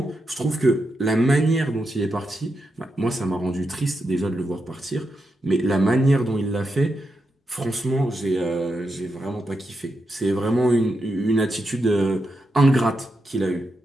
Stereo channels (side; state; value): both; normal; correlation 0.86